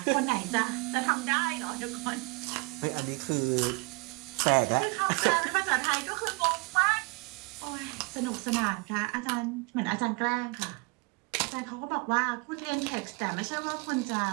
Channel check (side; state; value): left; quieter; 29.3 dB